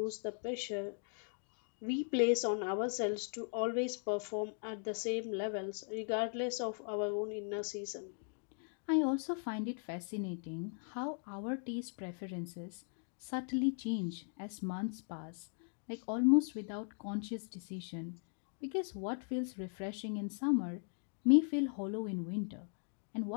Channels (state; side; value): silent; right; 52 dB below the other